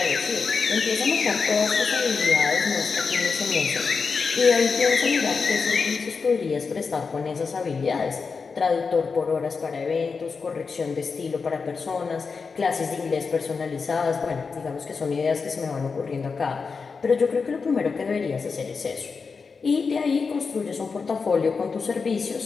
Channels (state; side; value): quieter; right; 5.0 dB